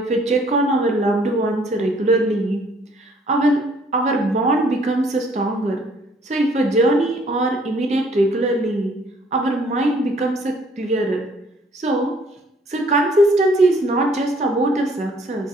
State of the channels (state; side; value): normal; both; correlation 0.61